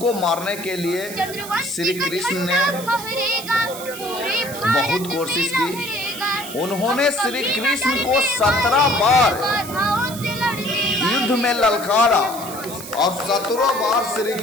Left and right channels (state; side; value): noise; right; hiss, 12 dB below the sound